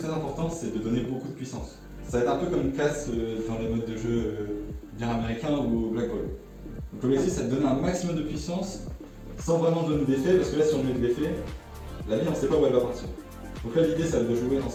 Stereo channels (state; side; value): identical; both; correlation 1.00